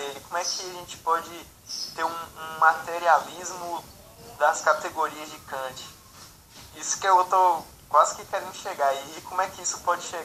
Como é que a gente pode ter um materialismo das categorias de Kant? Isso que eu estou quase que querendo chegar. E como é que isso pode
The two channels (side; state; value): both; identical; correlation 1.00